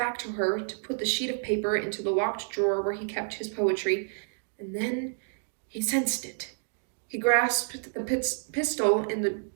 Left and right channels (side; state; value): left; silent; digital silence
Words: to her to put the sheet of paper into the locked drawer where he kept his poetry, and then he sensed it. He grasped the pistol in the